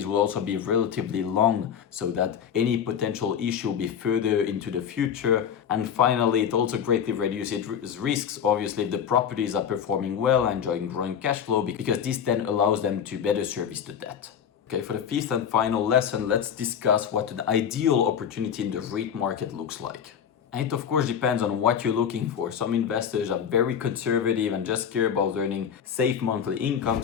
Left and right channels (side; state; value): right; quieter; 8.1 dB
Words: will also be relatively long, so that any potential issue will be further into the future. And finally, it also greatly reduces risks, obviously, if the properties are performing well, enjoying growing cash flow, because this then allows them to better service the debt. Okay, for the fifth and final lesson, let's discuss what an ideal opportunity in the REIT market looks like. And it of course depends on what you're looking for. Some investors are very conservative and just care about earning safe monthly income.